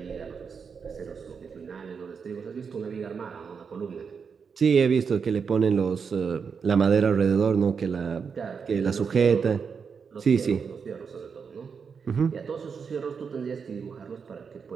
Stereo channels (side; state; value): left; quieter; 6.0 dB